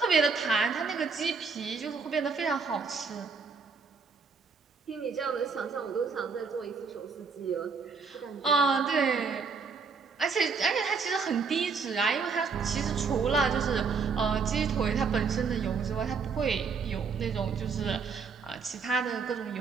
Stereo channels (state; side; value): quieter; left; 5.2 dB